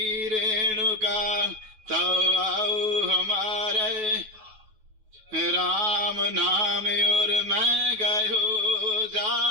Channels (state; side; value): late; left; 9.3 ms